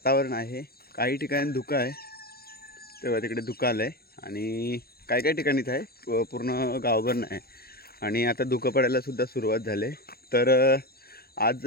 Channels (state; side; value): late; right; 0.45 ms